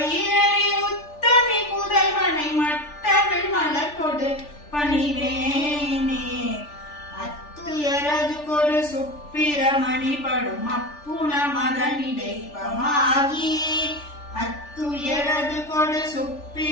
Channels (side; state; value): right; late; 3.4 ms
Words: உத்தமி புதல்வனை மட்டவில் மலர்கொடு பணிவேனே அத்துயரது கொடு சுப்பிரமணி படும் அப்புண மதனிடைபமாகி அத்துயரது கொடு